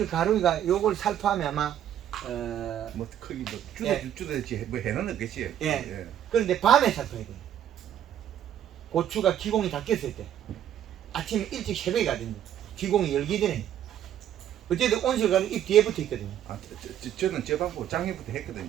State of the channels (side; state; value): left; quieter; 10.6 dB